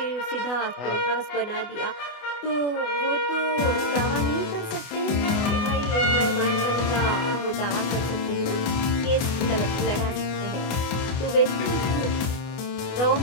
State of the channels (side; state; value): right; late; 24 ms